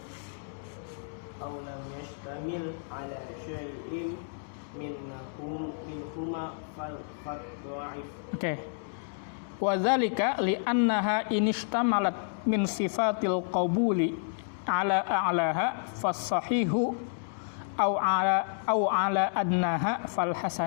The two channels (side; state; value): right; silent; digital silence